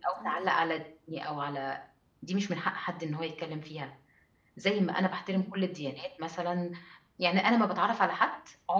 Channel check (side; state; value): both; identical; correlation 1.00